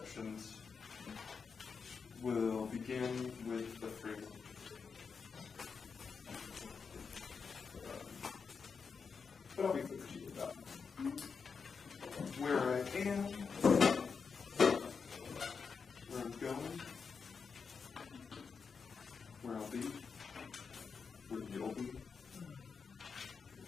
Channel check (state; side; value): quieter; right; 5.6 dB